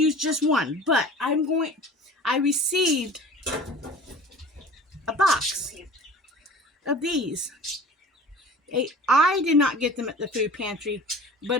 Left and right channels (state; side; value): normal; both; correlation 0.42